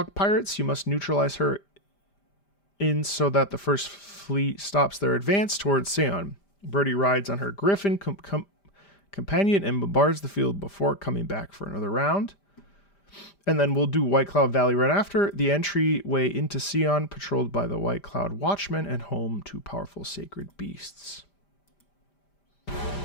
pirates, you must neutralize her in so that the first fleet stops their advance towards Seon. Birdie rides on her griffin companion and bombards the field before coming back for another round. And then we'll do White Cloud Valley right after. The entryway into Seon, patrolled by the White Cloud Watchmen and home to powerful sacred beasts.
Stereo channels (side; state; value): right; late; 5.0 ms